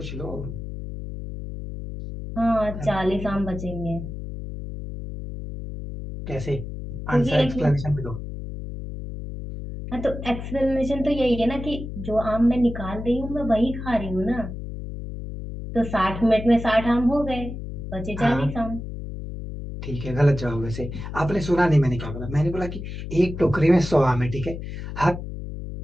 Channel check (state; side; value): noise; left; hum, 8 dB below the sound